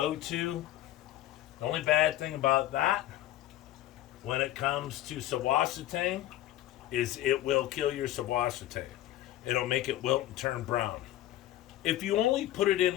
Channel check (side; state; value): right; quieter; 14.1 dB